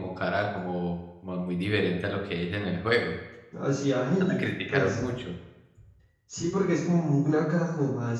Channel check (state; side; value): identical; both; correlation 1.00